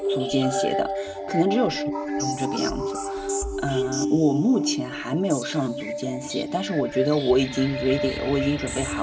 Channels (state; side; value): identical; both; correlation 1.00